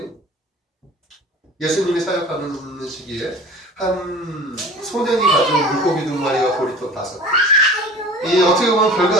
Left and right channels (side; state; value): both; normal; correlation 0.41